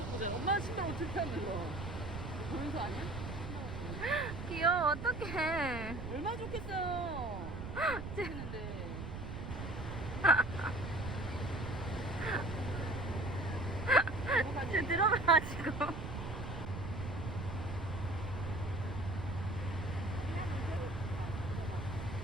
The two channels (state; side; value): noise; right; rumble, 7 dB below the sound